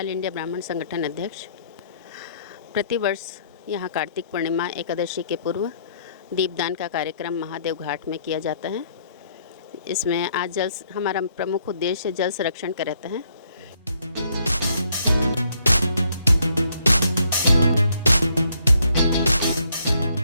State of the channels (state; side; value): inverted; both; correlation -0.69